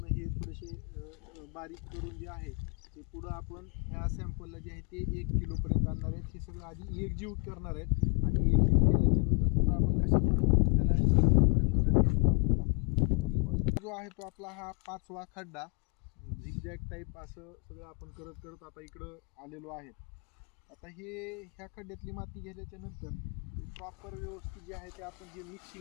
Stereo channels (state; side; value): quieter; right; 32.2 dB